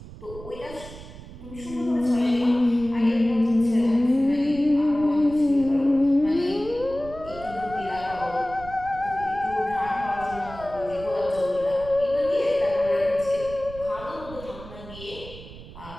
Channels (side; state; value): right; noise; rumble, 15 dB below the sound